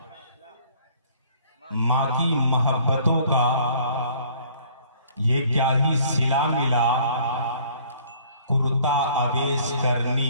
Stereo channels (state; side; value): inverted; both; correlation -0.56